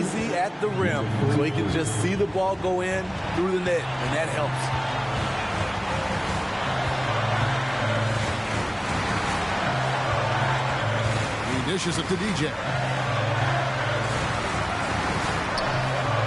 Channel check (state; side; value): identical; both; correlation 1.00